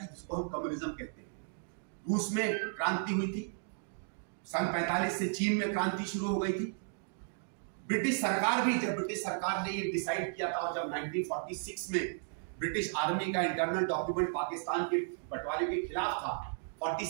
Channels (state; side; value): silent; left; digital silence